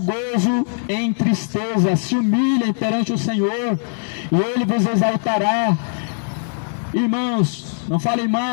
gozo em tristeza. Se humilhem perante o Senhor, e Ele vos exaltará. Irmãos, não falem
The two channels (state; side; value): silent; right; digital silence